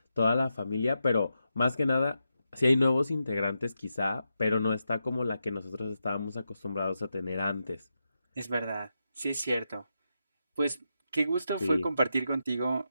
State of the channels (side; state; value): both; inverted; correlation -0.87